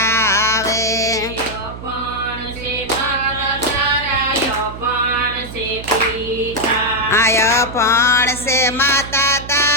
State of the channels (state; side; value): noise; right; hum, 12 dB below the sound